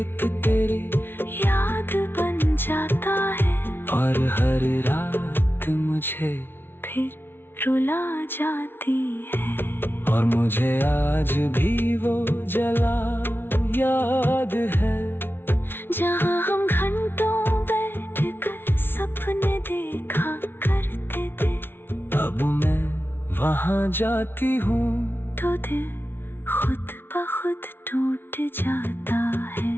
तेरी याद बन जाता है, और हर रात मुझे फिर रुला जाती है। और मुझे आज भी वो जला याद है, जहाँ हम घंटों बैठकर सपने देखा करते थे। अब मैं वहाँ जाती हूँ तो दिल खुद ब खुद टूट जाता है।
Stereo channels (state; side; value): late; right; 0.11 ms